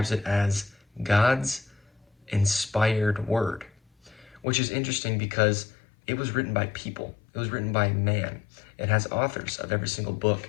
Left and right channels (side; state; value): right; drops out; at 4.4 s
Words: it as God's inspired word, which is interesting because it was written by people. It was written by man. It has authors of every single book